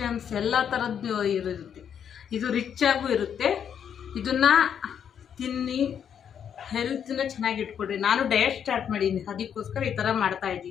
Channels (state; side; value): quieter; right; 8.3 dB